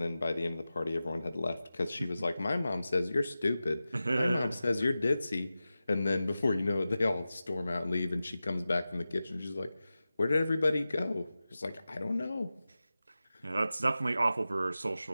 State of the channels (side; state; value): both; inverted; correlation -0.94